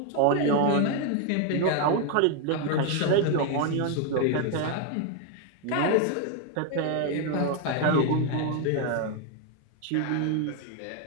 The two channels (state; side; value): different; both; correlation 0.01